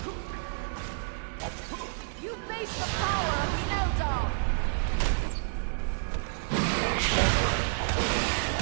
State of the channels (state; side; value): silent; left; digital silence